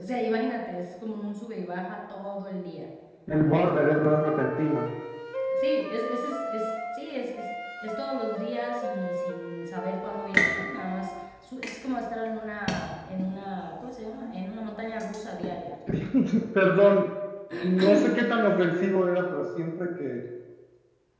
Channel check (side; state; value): both; identical; correlation 1.00